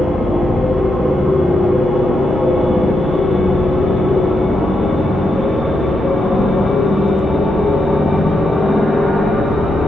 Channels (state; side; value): normal; both; correlation 0.84